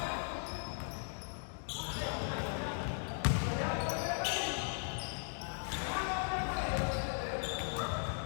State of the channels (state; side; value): silent; right; 53 dB below the other